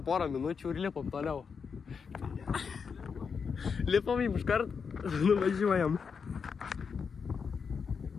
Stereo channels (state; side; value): quieter; right; 5.9 dB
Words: porą minučių ir lipam toliau. Lipam jums iškart, nuvažiuojam.